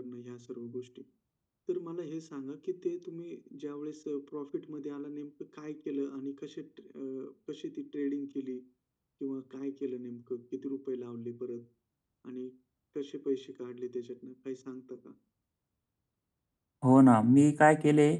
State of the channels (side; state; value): both; identical; correlation 1.00